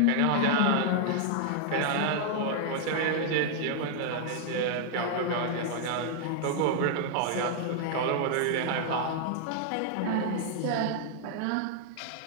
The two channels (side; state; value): both; different; correlation 0.00